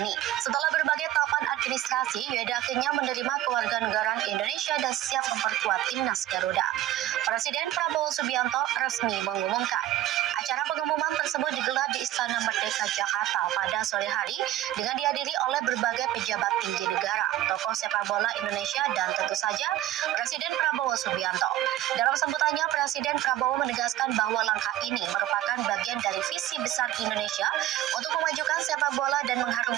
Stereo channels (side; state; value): left; quieter; 13.9 dB